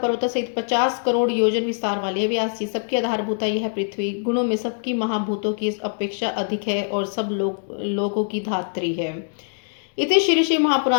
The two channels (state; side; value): silent; right; digital silence